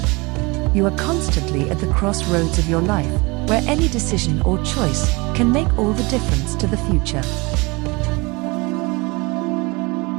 You are constantly at the crossroads of your life, where any decision or choice can make all the difference to the future.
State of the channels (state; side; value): quieter; left; 26.0 dB